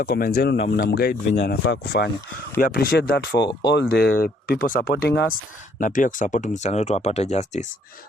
comments zenu na mnamguide venye anafaa kufanya. We appreciate that for all the people supporting us na pia kusupport msichana wetu apate justice.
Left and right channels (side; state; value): both; normal; correlation 0.66